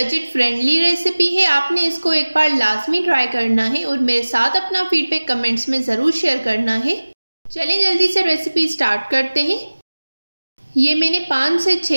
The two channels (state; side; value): inverted; both; correlation -1.00